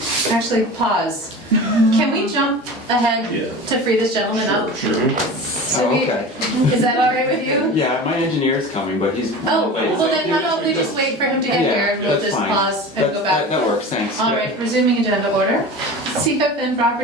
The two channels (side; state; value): both; normal; correlation 0.34